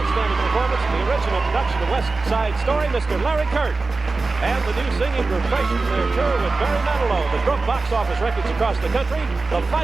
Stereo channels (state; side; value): quieter; left; 3.7 dB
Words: performance in the original production of West Side Story, Mr. Larry Kert. And the new singing group fresh from their tour with Barry Manilow that broke box office records across the country, the